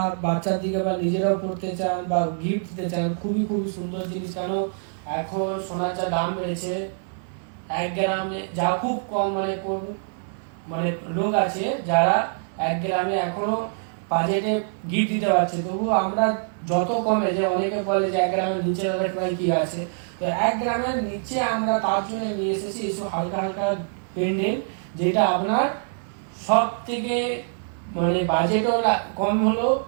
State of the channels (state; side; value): silent; left; 57 dB below the other